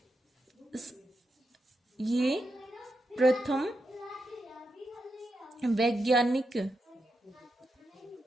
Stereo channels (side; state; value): both; normal; correlation 0.86